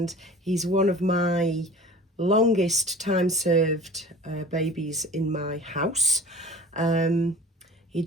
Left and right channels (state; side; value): normal; both; correlation 0.42